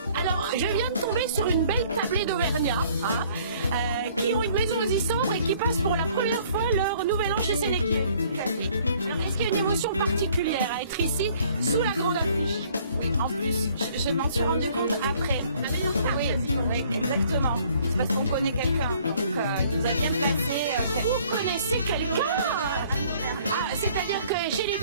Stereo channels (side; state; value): both; inverted; correlation -0.58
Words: Alors, je viens de tomber sur une belle tablée d'Auvergnat, qui ont une maison aux Issambres et qui passent pour la première fois leur nouvel an chez Sénéquier. Alors, est-ce qu'il y a une émotion particulière à être ici, sous la grande affiche? Oui, en plus, je m'en suis rendu compte après. Oui, exactement. C'est parce qu'on connaît quelqu'un, donc il nous a bien placé. Vous connaissez quelqu'un? Ah, c'est-à-dire que chez les